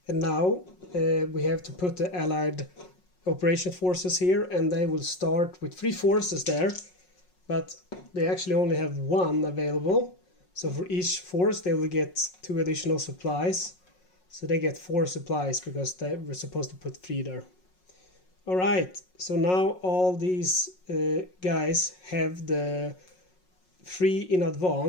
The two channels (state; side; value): late; right; 5.5 ms